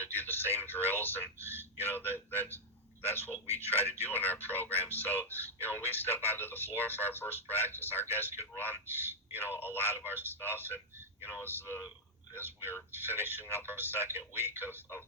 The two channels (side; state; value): both; normal; correlation -0.04